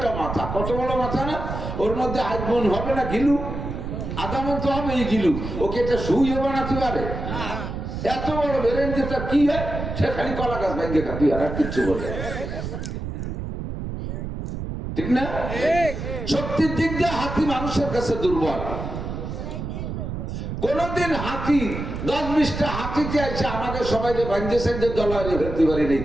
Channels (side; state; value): right; noise; rumble, 6 dB below the sound